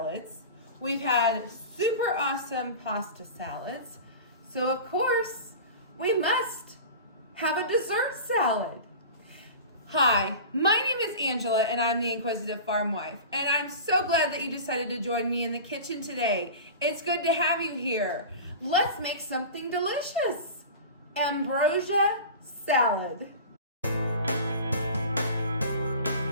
We've had super awesome pasta salads. So of course, we must have a dessert salad. Hi, my name is Angela and I'm the Inquisitive Farm Wife. And I'm so glad that you decided to join me in the kitchen today. It's good to have you here. Let's make something delicious. Ambrosia salad.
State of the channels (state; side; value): inverted; both; correlation -0.34